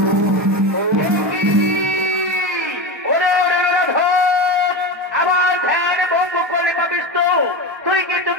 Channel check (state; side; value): late; left; 1.3 ms